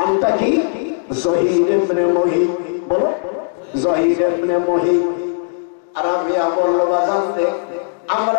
কি? জহির ইবনে মুহিব। বলো, জহির ইবনে মুহিব। রাবিয়া বলল, বাজান রে,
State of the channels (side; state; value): right; silent; digital silence